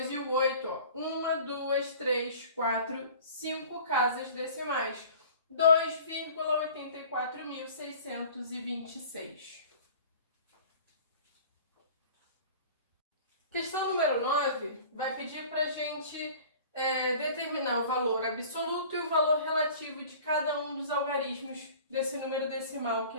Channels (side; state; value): both; inverted; correlation -0.44